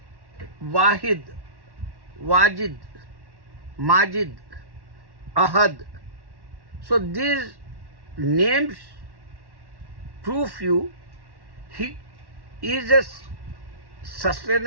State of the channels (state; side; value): late; left; 1.1 ms